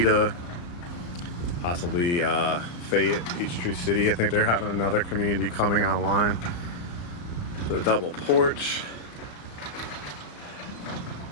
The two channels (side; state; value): right; late; 34 ms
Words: possibly Fayette, Peachtree City. I think they're having another community coming online. The double porch.